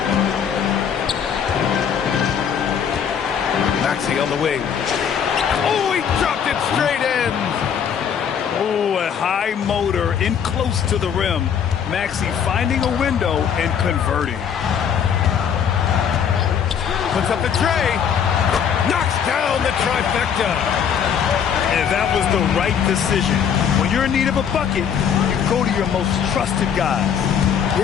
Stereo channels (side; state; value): right; quieter; 7.9 dB